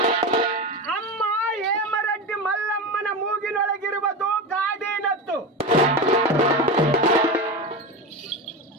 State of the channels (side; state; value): both; normal; correlation 0.21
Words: ಅಮ್ಮ ಹೇಮರೆಡ್ಡಿ ಮಲ್ಲಮ್ಮನ ಮೂಗಿನೊಳಗಿರುವುದು ಗಾಡಿನತ್ತು.